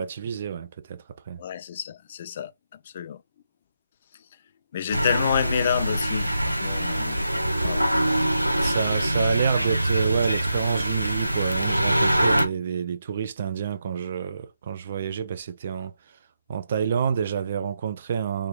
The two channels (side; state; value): both; inverted; correlation -0.83